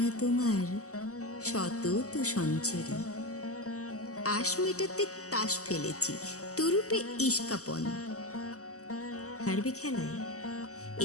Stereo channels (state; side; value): late; right; 0.66 ms